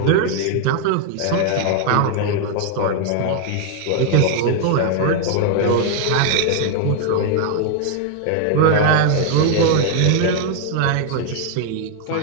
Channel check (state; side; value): different; both; correlation 0.00